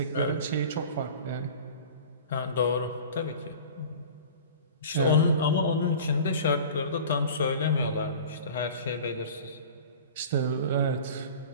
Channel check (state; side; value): inverted; both; correlation -0.39